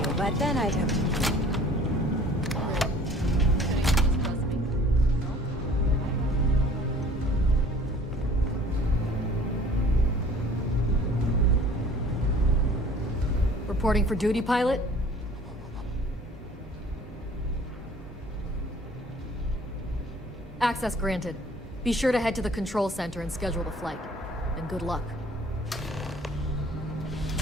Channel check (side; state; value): both; normal; correlation 0.51